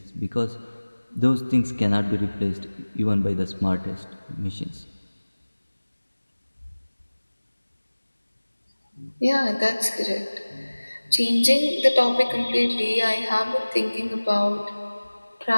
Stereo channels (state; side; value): inverted; both; correlation -1.00